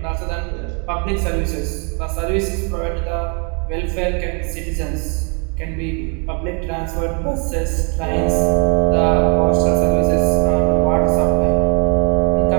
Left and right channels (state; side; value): quieter; left; 36.1 dB